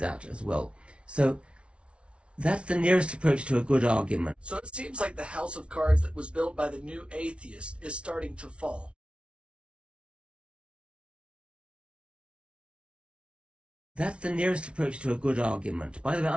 as well. So that's the nearest approach to a good argument. So it seems like the house of cards that was built by the new atheist is starting to fall. That's the nearest approach to a good argument. By the way,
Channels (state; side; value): late; left; 0.059 ms